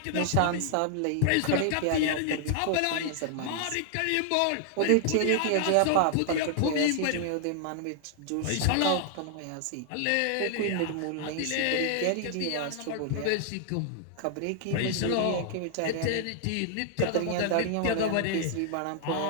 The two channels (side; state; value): both; different; correlation 0.00